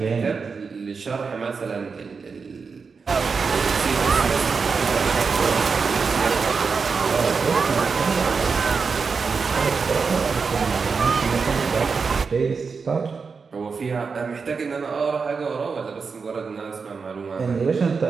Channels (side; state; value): left; quieter; 5.1 dB